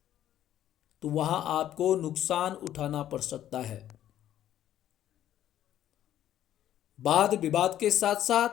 तो वहां आपको नुकसान उठाना पड़ सकता है। वाद विवाद के साथ साथ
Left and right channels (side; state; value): right; quieter; 11.8 dB